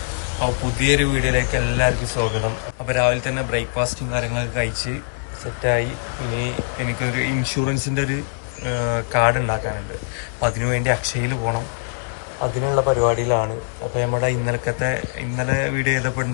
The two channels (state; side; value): silent; right; digital silence